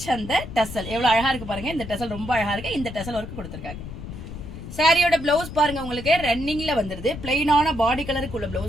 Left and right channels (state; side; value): noise; left; rumble, 10 dB below the sound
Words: அந்த டசல் எவ்வளவு அழகா இருக்கு பாருங்க. இந்த டசல் ரொம்ப அழகா இருக்கு. இந்த டசல் ஒர்க் கொடுத்துருக்காங்க. சாரியோட பிளவுஸ் பாருங்க, உங்களுக்கு ரன்னிங்ல வந்துருது. பிளைனான பாடி கலருக்கு உள்ள